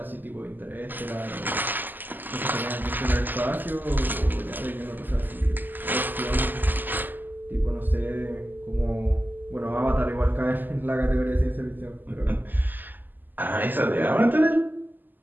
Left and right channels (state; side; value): late; left; 0.088 ms